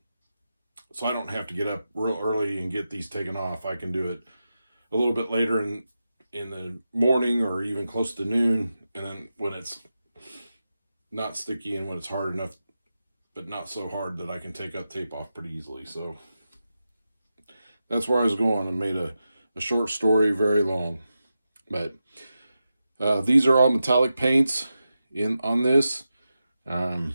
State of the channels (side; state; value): both; inverted; correlation -0.90